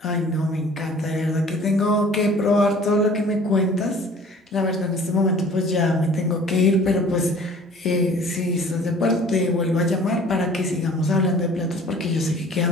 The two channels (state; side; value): normal; both; correlation 0.49